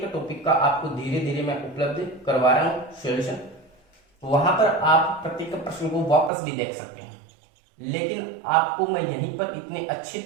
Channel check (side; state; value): left; drops out; at 6.3 s